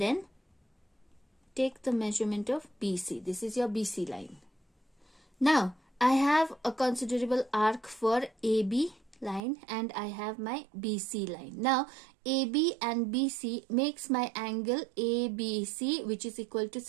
take the measurement of BC. This is your BC line. Now I have a considerable arc for AB line and I have my BC line. Now AB and BC makes my angle ABC, which is equal to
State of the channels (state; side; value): drops out; left; at 9.4 s